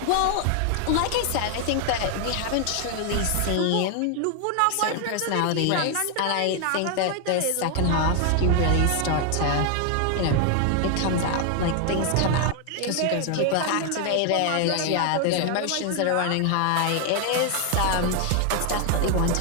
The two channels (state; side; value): different; both; correlation 0.00